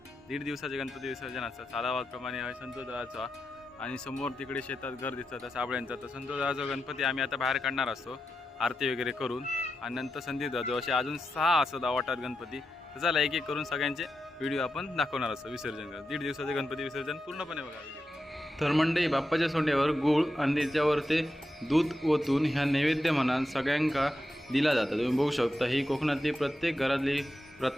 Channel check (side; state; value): both; normal; correlation 0.88